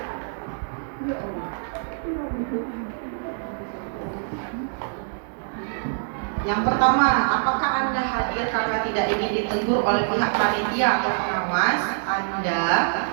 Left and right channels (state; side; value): silent; left; 62 dB below the other